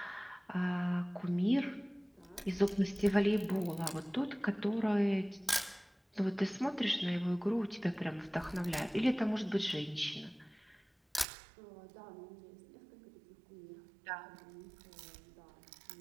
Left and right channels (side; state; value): left; drops out; at 11.2 s